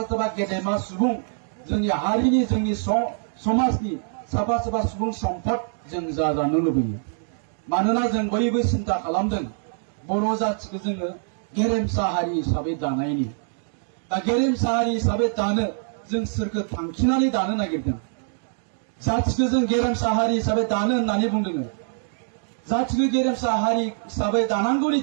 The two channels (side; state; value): left; silent; 62 dB below the other